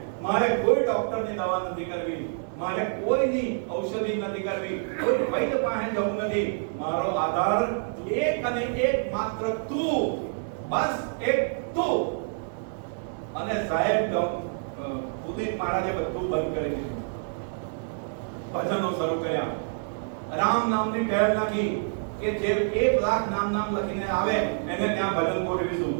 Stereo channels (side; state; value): left; silent; 60 dB below the other